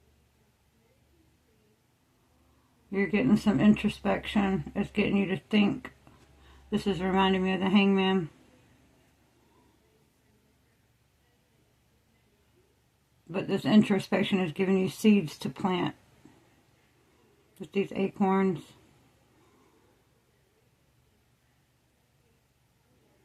You're getting some introspection. It's getting you to think. This is reminding me of the Hangman. But this introspection is giving you seeds to plant. With these acorns.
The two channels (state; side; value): identical; both; correlation 1.00